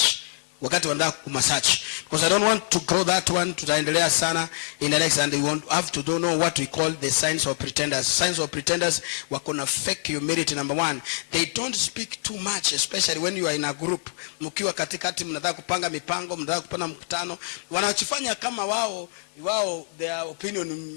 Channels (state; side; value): silent; right; digital silence